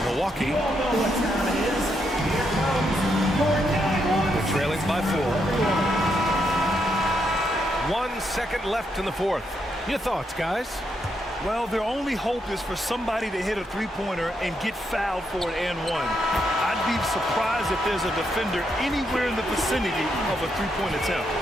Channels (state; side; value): normal; both; correlation 0.79